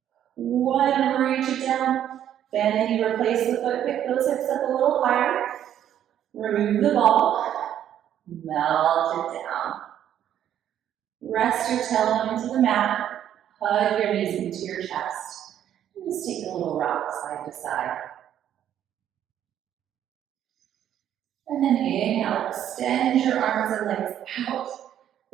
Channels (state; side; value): quieter; left; 10.5 dB